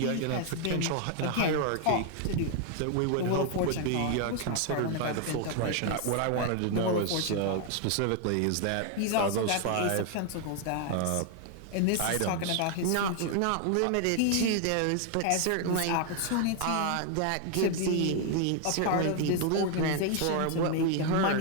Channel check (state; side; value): different; both; correlation 0.00